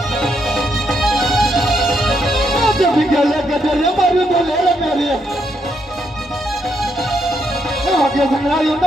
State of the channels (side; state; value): both; normal; correlation 0.77